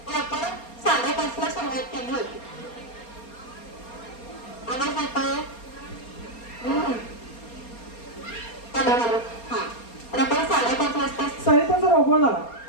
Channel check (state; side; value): late; right; 4.3 ms